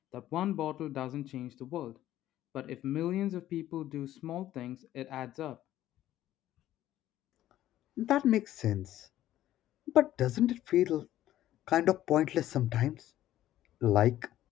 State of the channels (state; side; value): quieter; right; 13.4 dB